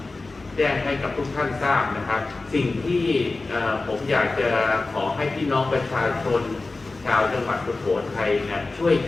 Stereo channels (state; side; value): quieter; right; 3.4 dB